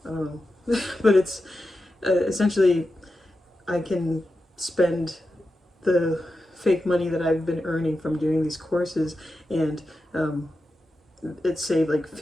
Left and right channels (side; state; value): both; normal; correlation 0.91